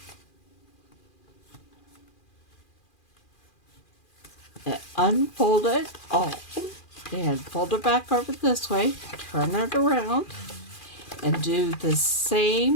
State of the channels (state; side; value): late; right; 2.4 ms